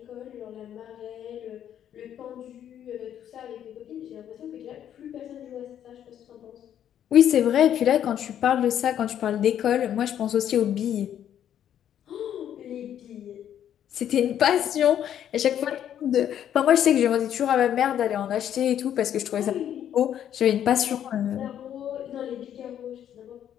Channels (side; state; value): right; quieter; 10.1 dB